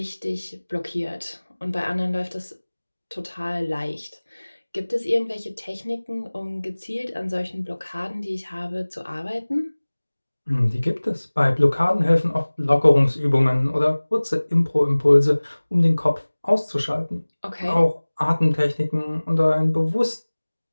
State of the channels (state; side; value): inverted; both; correlation -1.00